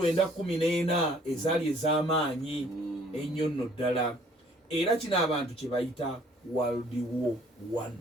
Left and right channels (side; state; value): both; normal; correlation 0.58